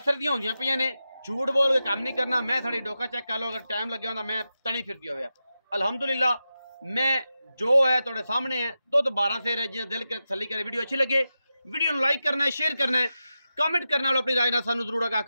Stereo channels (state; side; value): inverted; both; correlation -0.91